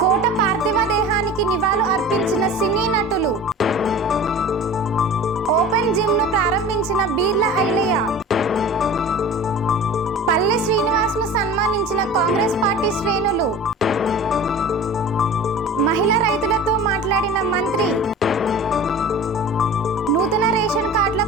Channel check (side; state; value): both; normal; correlation 0.37